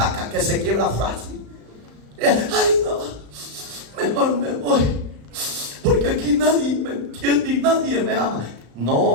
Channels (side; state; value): left; late; 35 ms